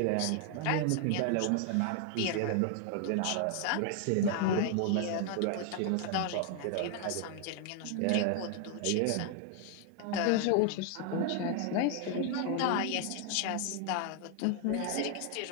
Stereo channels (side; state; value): both; different; correlation 0.00